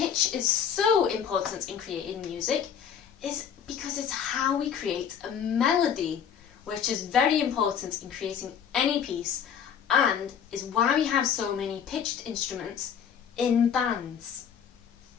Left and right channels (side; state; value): right; quieter; 8.0 dB